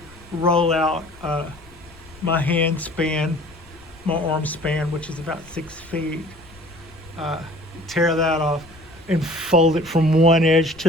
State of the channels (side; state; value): left; noise; rumble, 23 dB below the sound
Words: roll out my hand span, my arm span, which is about 6 feet. Tear that off and fold it from one edge